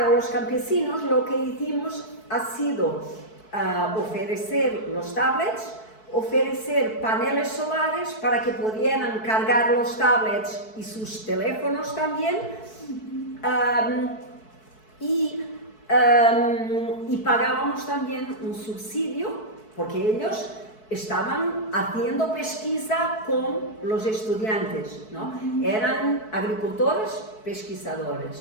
los campesinos lo que hicimos ha sido ofrecer los tablets, ofrecer paneles solares para que pudieran cargar los tablets y sus teléfonos también, y pagábamos también un subsidio porque ellos estaban haciendo pesquisa con los estudiantes, ¿no? Eran agricultores,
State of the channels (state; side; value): late; right; 4.6 ms